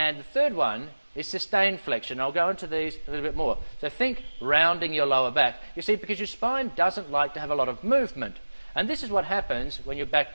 the third one is sustained flexion. I'll go into these a little bit more. So think rounding your lower back. You see, because your spine doesn't like to have a lot of movement. And this is what happens when your back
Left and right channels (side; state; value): both; inverted; correlation -1.00